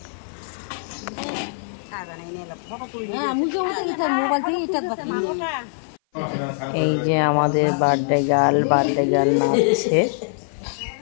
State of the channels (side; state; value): right; silent; 56 dB below the other